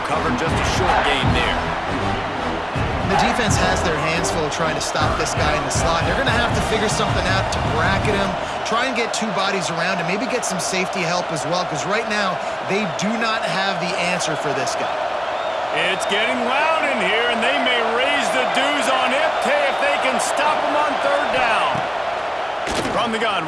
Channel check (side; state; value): both; identical; correlation 1.00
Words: covered, just a short gain there. The defense has their hands full trying to stop this guy in the slot. They're going to have to figure something out to bracket him, try and get 2 bodies around him, maybe get some safety help as well, because right now they do not have the answer for this guy. It's getting loud in here, and they may raise the dues on Ipte if they can stop him on third down. From the gun,